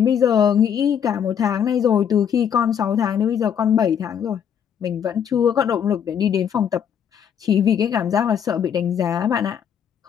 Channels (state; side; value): quieter; right; 8.3 dB